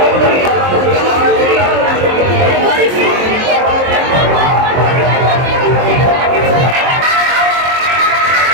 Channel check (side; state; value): left; late; 23 ms